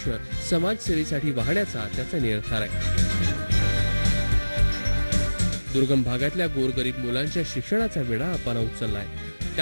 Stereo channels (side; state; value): both; inverted; correlation -1.00